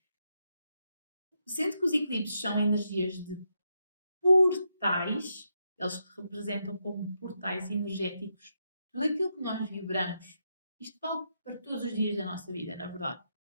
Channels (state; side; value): inverted; both; correlation -0.82